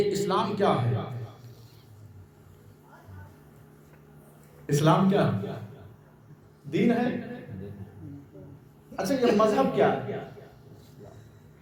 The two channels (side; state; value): both; identical; correlation 1.00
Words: اسلام کیا ہے؟ اسلام کیا ہے؟ دین ہے. اچھا یہ مذہب کیا ہے؟